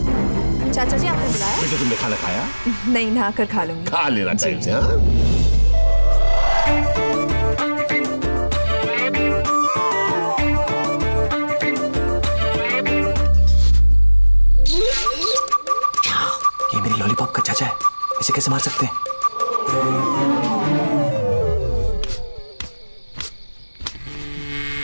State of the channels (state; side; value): inverted; both; correlation -1.00